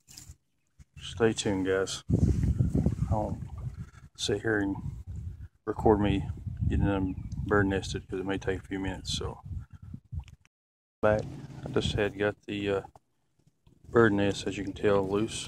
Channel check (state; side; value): identical; both; correlation 1.00